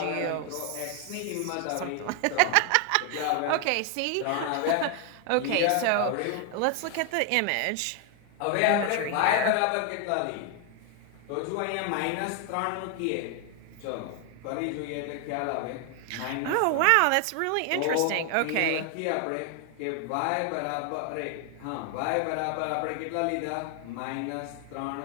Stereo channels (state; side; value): different; both; correlation 0.00